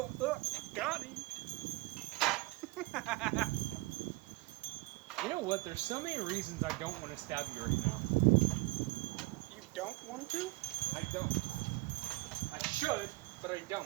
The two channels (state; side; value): quieter; left; 22.3 dB